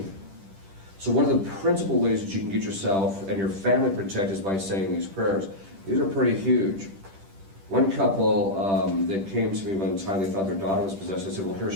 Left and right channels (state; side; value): late; left; 10 ms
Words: So one of the principal ways that you can get yourself and your family protected is by saying these prayers. These are pretty huge. One couple that came to me one time, they thought their daughter was possessed. I said, well, here,